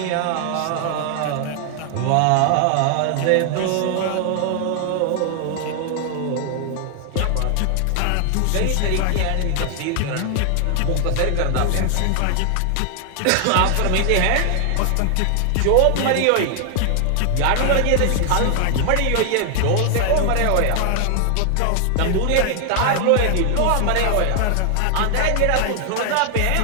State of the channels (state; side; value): different; both; correlation 0.00